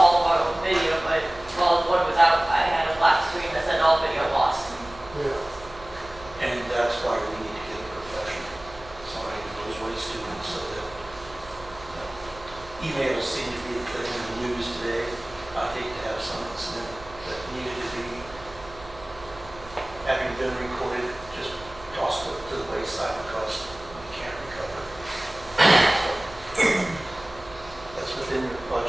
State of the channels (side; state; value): right; noise; hum, 19 dB below the sound